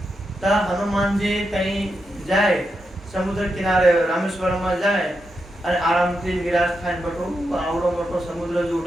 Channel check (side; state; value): both; normal; correlation 0.85